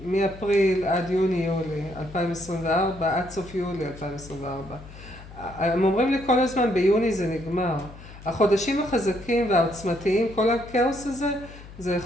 מאפריל עד יוני-יולי 2024, עד סוף יולי 2024? הם אומרים לי כל הזמן, ביוני זה נגמר. החודשים החזקים והעוצמתיים, כל הכאוס הזה, זה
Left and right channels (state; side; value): noise; left; hum, 17 dB below the sound